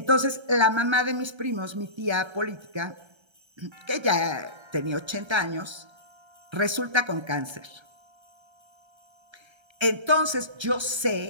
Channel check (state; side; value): late; left; 1.3 ms